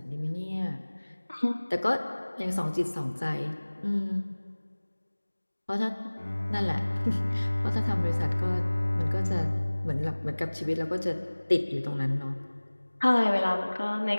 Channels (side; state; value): both; inverted; correlation -1.00